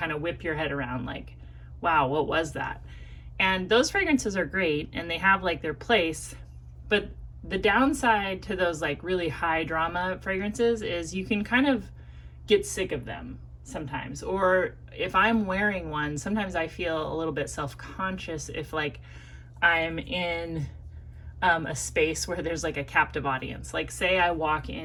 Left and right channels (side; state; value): both; identical; correlation 1.00